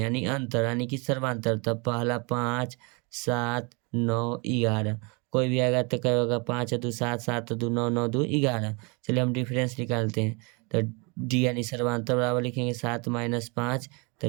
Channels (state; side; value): quieter; left; 30.7 dB